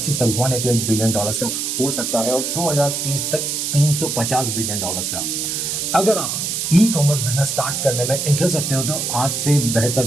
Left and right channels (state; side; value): noise; right; hiss, 2 dB below the sound